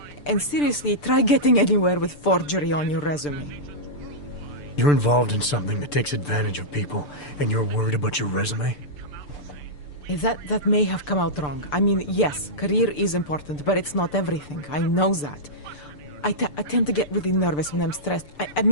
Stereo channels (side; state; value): right; late; 6.8 ms